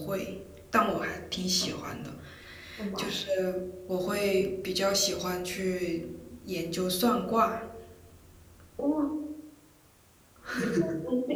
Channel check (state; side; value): identical; both; correlation 1.00